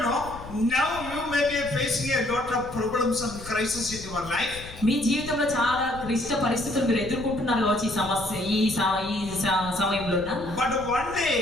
know, now you may be facing a lot of problems and crises in your life. మీ జీవితంలో చాలా క్లిష్ట పరిస్థితులు మీరు ఎదుర్కొంటున్నారు కావచ్చు ఈ సమస్య ఈ సమయంలో. But one day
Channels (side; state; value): left; noise; rumble, 15 dB below the sound